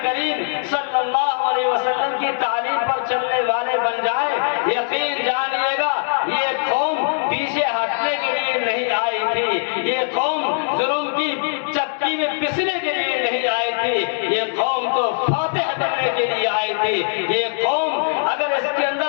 کریم صلی اللہ علیہ وسلم کی تعلیم پر چلنے والے بن جائیں، یقین جانیے گا یہ قوم پیچھے ہٹنے کے لیے نہیں آئی تھی، یہ قوم ظلم کی چکی میں پسنے کے لیے نہیں آئی تھی، یہ قوم تو فاتح بننے کے لیے آئی تھی۔ یہ قوم اگر اس کے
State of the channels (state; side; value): silent; right; 65 dB below the other